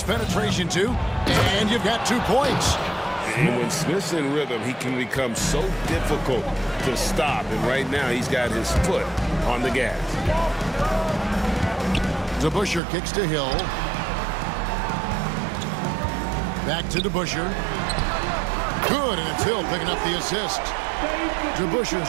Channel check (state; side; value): drops out; left; at 12.8 s